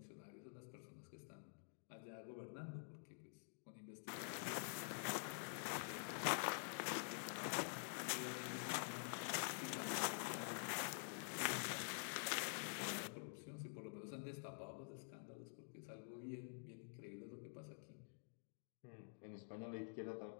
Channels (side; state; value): right; silent; digital silence